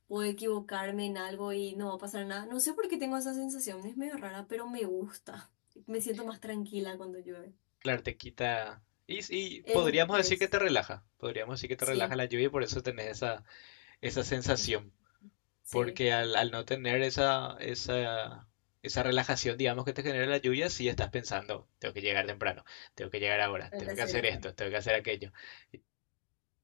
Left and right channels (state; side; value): silent; right; digital silence